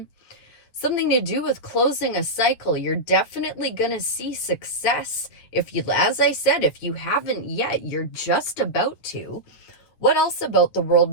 Something to do with closing a cycle. You're definitely going to see success. If you, as I said, if you haven't yet, you're just about to. What else about the world?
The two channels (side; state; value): right; late; 9.2 ms